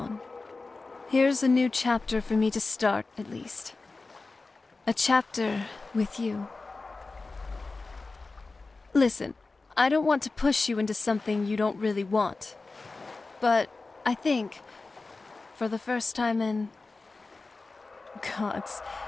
Here's a new chapter for me to start, at least. A chapter with you. Listen, I don't want to push you into something you don't really want. But I think, for the first time in... Gods,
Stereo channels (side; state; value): right; quieter; 3.7 dB